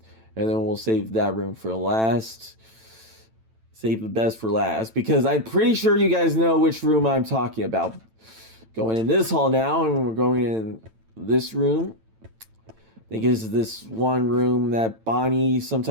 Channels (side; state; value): left; late; 9.0 ms